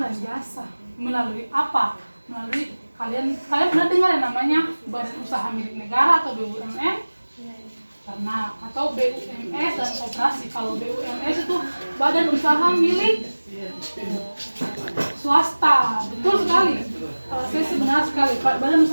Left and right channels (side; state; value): both; inverted; correlation -1.00